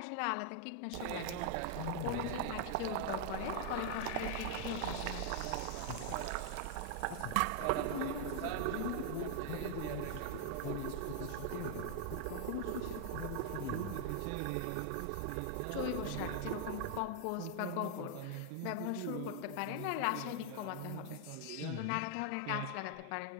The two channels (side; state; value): both; different; correlation 0.00